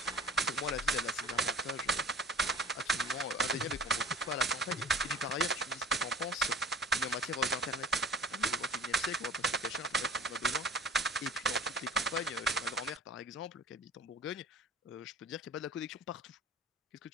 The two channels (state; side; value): normal; both; correlation 0.43